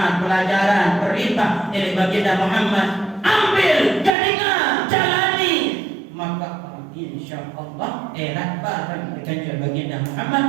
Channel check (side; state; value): left; drops out; at 4.2 s